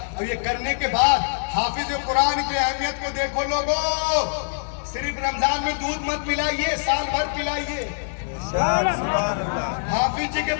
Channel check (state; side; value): silent; right; digital silence